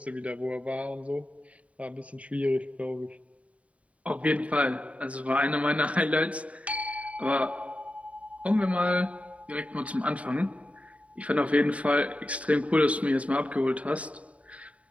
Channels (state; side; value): late; left; 0.066 ms